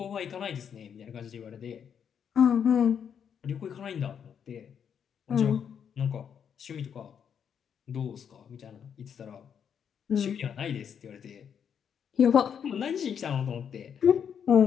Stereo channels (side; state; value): right; quieter; 7.8 dB